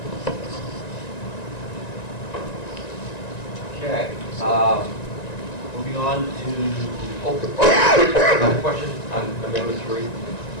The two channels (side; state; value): right; late; 1.9 ms